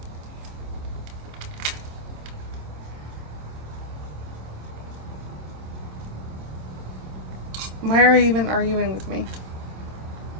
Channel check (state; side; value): late; left; 26 ms